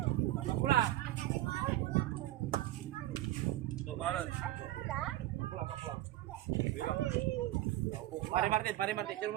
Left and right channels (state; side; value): quieter; left; 15.4 dB